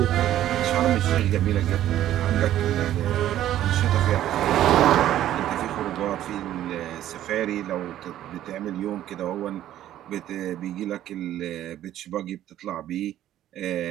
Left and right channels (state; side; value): quieter; left; 12.5 dB